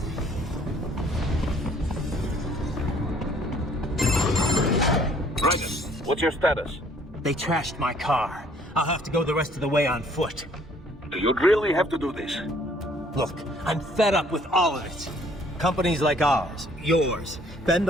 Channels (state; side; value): normal; both; correlation 0.60